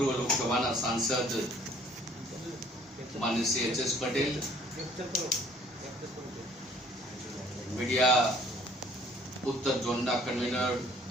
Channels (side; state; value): both; normal; correlation 0.57